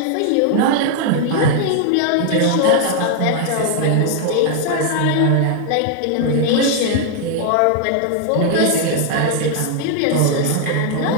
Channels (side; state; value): both; different; correlation 0.00